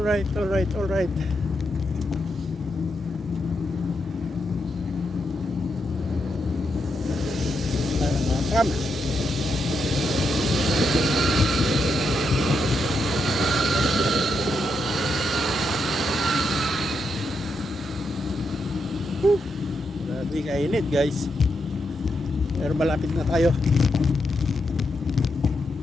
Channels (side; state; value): both; normal; correlation 0.82